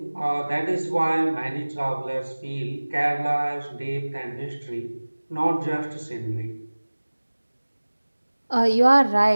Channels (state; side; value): inverted; both; correlation -1.00